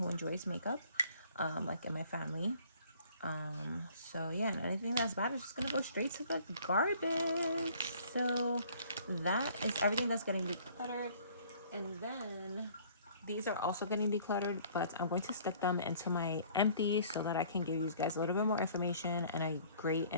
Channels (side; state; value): both; inverted; correlation -0.56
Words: enjoys makeup, like in my family. So yeah, and anything that's bad is just gonna go straight to the garbage. So that is everything that's getting decluttered. And then these are also getting decluttered, but I'm going to stick them into my empty so that I can give you guys a little bit more information and a great